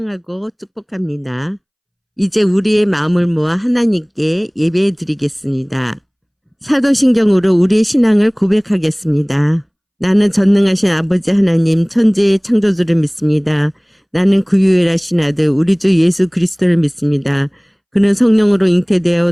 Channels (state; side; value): identical; both; correlation 1.00